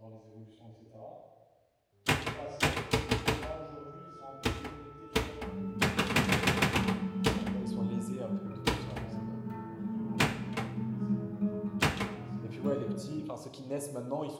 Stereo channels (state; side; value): identical; both; correlation 1.00